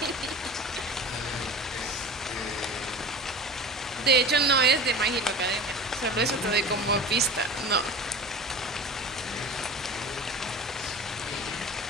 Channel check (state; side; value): normal; both; correlation 0.35